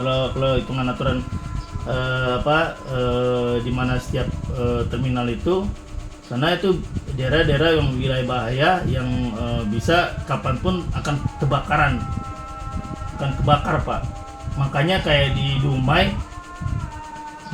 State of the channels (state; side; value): identical; both; correlation 1.00